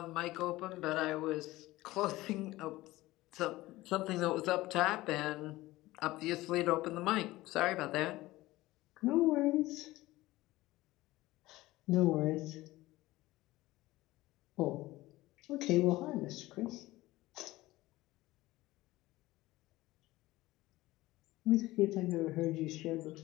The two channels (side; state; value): right; quieter; 18.1 dB